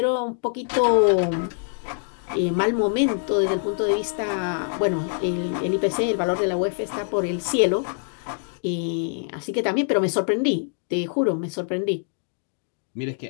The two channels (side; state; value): right; silent; digital silence